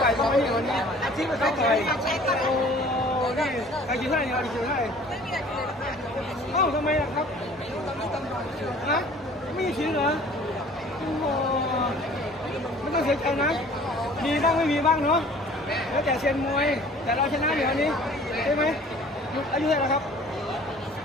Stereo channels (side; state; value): both; normal; correlation 0.50